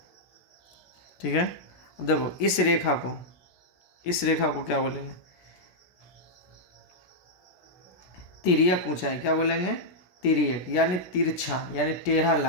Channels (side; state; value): right; late; 17 ms